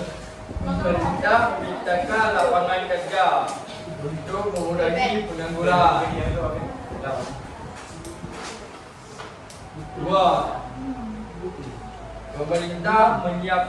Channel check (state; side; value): identical; both; correlation 1.00